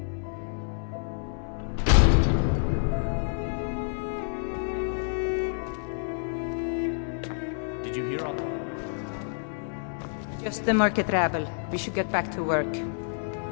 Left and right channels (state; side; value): silent; right; 59 dB below the other